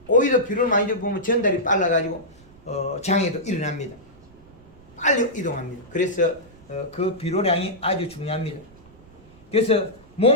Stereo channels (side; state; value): right; noise; rumble, 25 dB below the sound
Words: 오이도 비료를 많이 주면 전달이 빨라가지고 장애도 일어납니다. 빨리 이동합니다. 그래서 그 비료량이 아주 중요합니다. 그래서